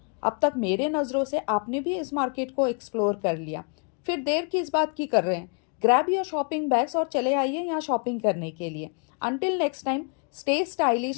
अब तक मेरे नज़रों से आपने भी इस मार्केट को एक्सप्लोर कर लिया। फिर देर किस बात की कर रहे हैं, ग्रैब योर शॉपिंग बैग्स और चले आइए यहाँ शॉपिंग करने के लिए। Until next time, stay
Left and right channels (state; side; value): quieter; right; 38.7 dB